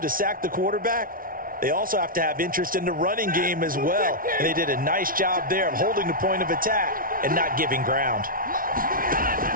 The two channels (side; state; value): left; late; 0.41 ms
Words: sack the quarterback, they also have to have interest in the running game as well. And they did a nice job there of holding the point of attack and not giving ground.